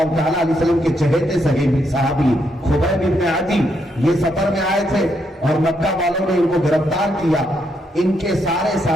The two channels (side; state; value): both; normal; correlation 0.78